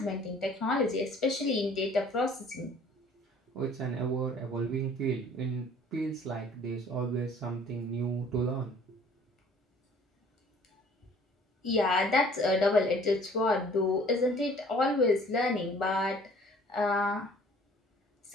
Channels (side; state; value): both; normal; correlation 0.53